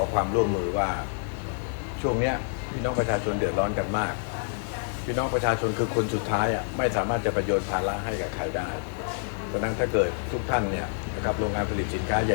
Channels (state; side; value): silent; right; digital silence